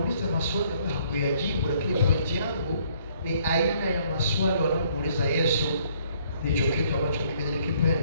maswali ambayo hakuyajibu, lakini pointi yangu ni aina ya maswali wanamuuliza Yesu. Ndicho kitu ambacho mimi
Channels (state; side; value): inverted; both; correlation -0.63